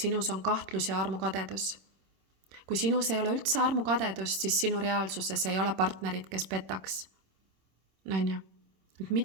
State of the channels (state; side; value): late; left; 26 ms